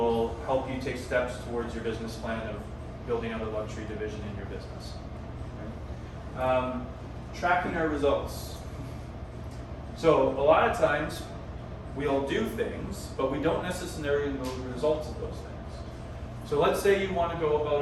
help you take steps towards your business plan of building out a luxury division in your business. Right? Tracking our results. So a lot of times we'll do things, but we don't necessarily know the results of those things. So let's say you want to go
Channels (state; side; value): identical; both; correlation 1.00